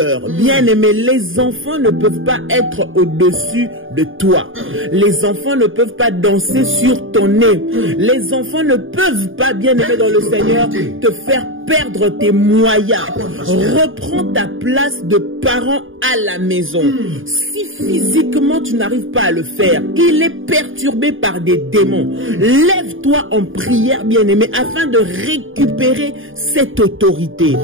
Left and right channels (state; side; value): late; left; 0.58 ms